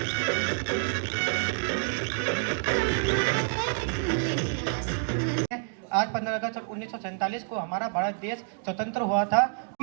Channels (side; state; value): left; silent; 55 dB below the other